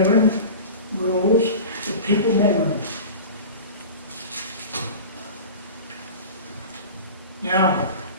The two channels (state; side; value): inverted; both; correlation -0.34